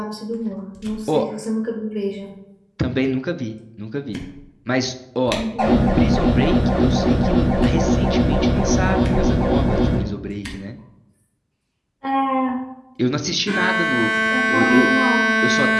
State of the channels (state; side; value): identical; both; correlation 1.00